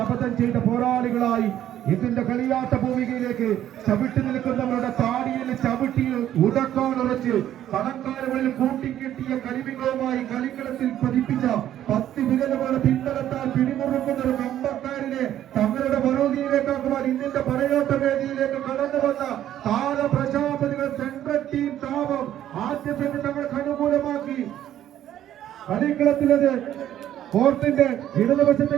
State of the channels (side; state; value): left; quieter; 11.6 dB